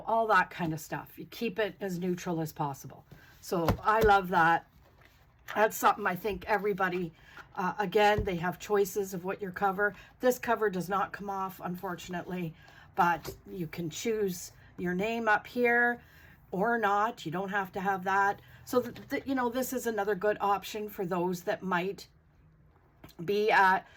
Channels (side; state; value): both; identical; correlation 1.00